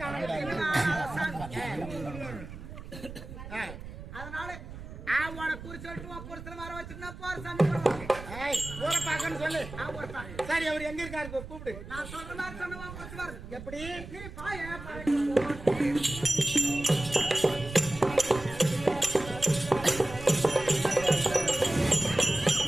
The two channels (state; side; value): noise; right; rumble, 12 dB below the sound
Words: அதனால அவனை குறி சொல்லிட்டு புருஷனை வர வச்சுட்டு போற சாமி ஊரை பார்க்கன்னு சொல்லு. சரி அவர் எங்க இருக்காரு கூப்பிடு. நான் சொல்ற மாதிரி சொன்ன எப்படி நீ பாய